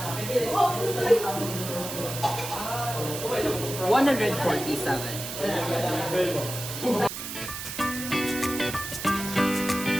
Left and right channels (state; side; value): noise; right; hiss, 7 dB below the sound